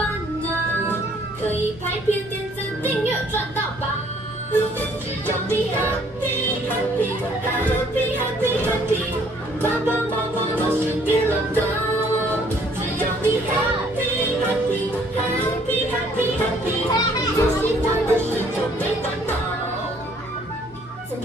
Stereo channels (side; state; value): both; normal; correlation 0.61